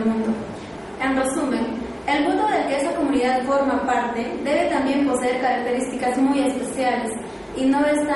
mundo. En resumen, El mundo del que esa comunidad forma parte debe también poseer características muy especiales y no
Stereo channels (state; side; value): identical; both; correlation 1.00